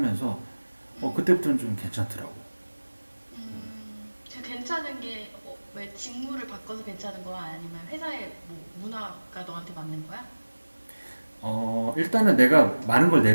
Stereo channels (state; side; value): inverted; both; correlation -1.00